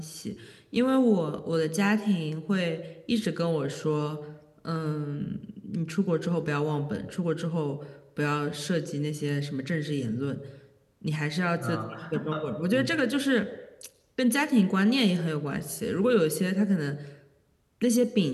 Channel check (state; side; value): identical; both; correlation 1.00